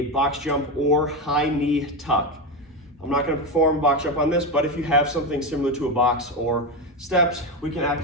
box jump or high knee tuck. I'm not going to perform a box jump on this, but if you have something similar to a box or steps, we can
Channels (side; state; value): both; normal; correlation 0.14